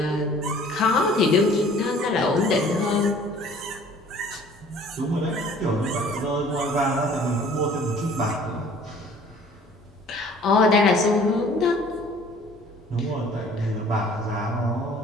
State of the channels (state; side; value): normal; both; correlation 0.52